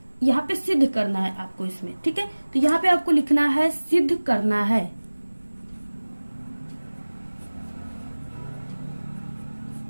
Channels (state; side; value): inverted; both; correlation -1.00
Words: पे सिद्ध करना है आपको इसमें, ठीक है। तो यहाँ पे आपको लिखना है सिद्ध करना है।